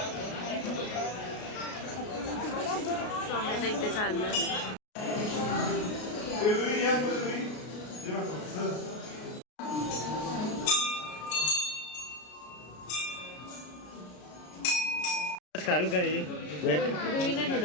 स्वामीचं इथे चाललं. रुईने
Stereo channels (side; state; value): right; late; 33 ms